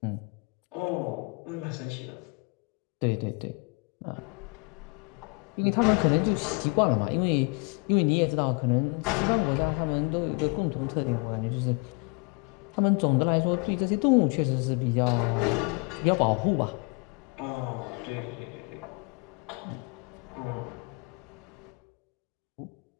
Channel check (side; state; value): right; quieter; 30.7 dB